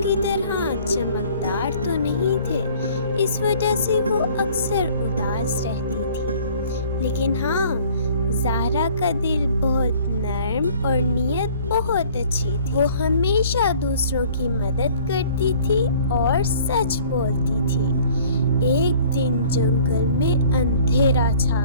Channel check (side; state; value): both; inverted; correlation -0.53